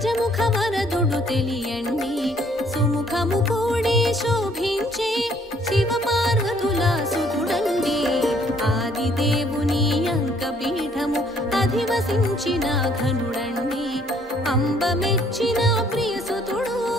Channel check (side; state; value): both; normal; correlation 0.63